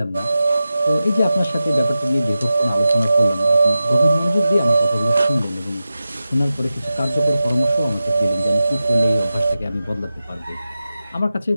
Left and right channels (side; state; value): both; inverted; correlation -0.93